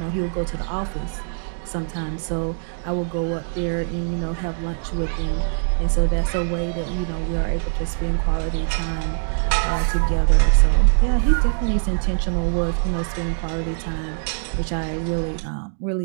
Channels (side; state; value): left; silent; digital silence